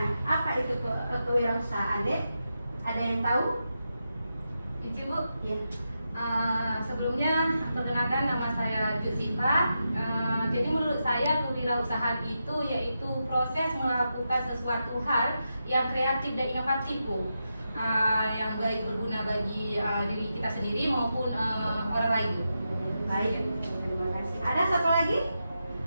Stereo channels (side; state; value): both; inverted; correlation -0.88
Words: Apa itu kewirausahaan, Dek? Ada yang tahu? Ici, Bu. Ya. Sebelumnya perkenalkan, nama saya Jusifa. Jadi menurut saya kewirausahaan itu yaitu proses melakukan sesuatu hal yang kreatif dan inovatif, Bu. Yang baik berguna bagi diri kita sendiri maupun orang lain. Baik, terima kasih. Ada satu lagi?